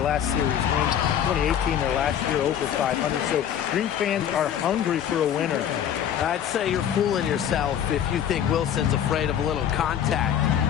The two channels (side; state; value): right; quieter; 9.5 dB